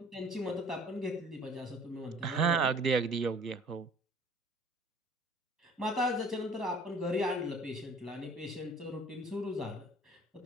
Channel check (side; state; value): both; normal; correlation 0.51